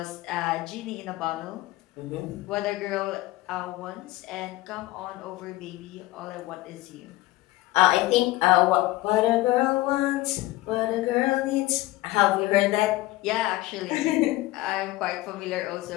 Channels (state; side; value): quieter; right; 18.1 dB